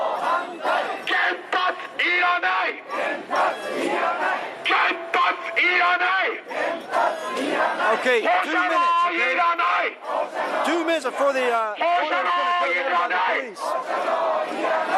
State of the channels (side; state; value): both; identical; correlation 1.00